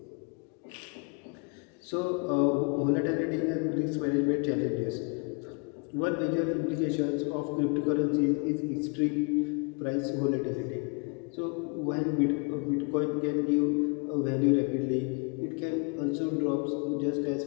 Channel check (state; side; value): quieter; right; 34.8 dB